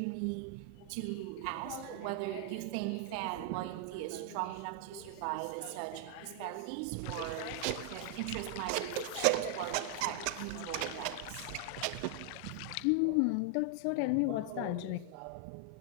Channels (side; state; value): both; different; correlation 0.00